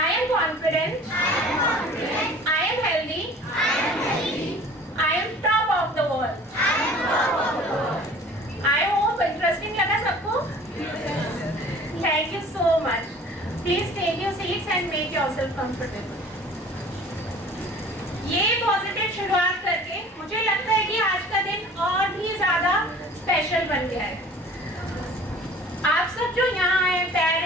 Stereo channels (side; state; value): both; normal; correlation 0.47